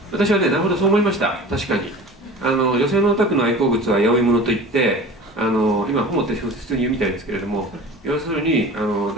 私はね、なるほどそう思いました。確かに女性のオタクの愛好物は八百物といって、今ホモって普通に言うみたいですけれども、要するに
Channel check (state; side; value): normal; both; correlation 0.38